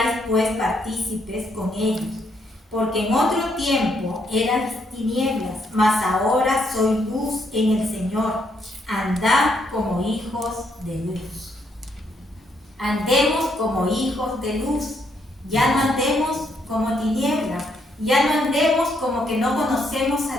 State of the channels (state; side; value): normal; both; correlation 0.74